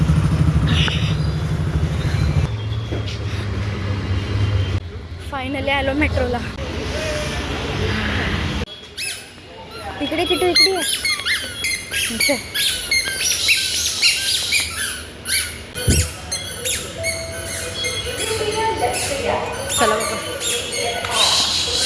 फायनली आलो मेट्रोला. इकडे किती इकडे इथे. चला बघा.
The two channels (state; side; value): identical; both; correlation 1.00